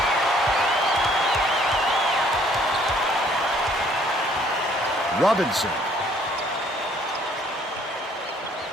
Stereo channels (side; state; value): both; normal; correlation 0.61